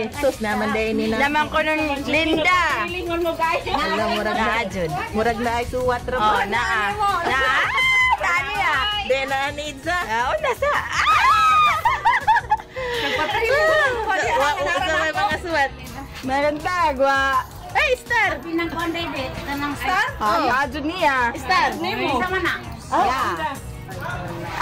Sus naman dahil nila. Naman ko ng Linda. Lingon mo guys. Alam, murag na ajud. Murag na ay suwat ro. Oh, naa. Kani De na need sa. Oh, nasa. Nagpatay mo. Wa sa mga suwat. Maganda, gwa. Hey, Star! Pinang konday date kanang star. Oh, ajud niya. Star. Nemo. Sama na. Yeah.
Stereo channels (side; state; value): both; identical; correlation 1.00